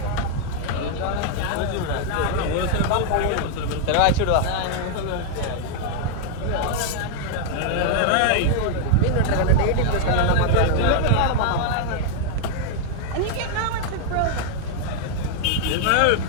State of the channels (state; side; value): different; both; correlation 0.00